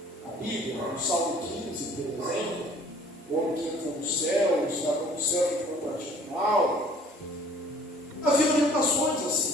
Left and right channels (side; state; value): both; normal; correlation 0.54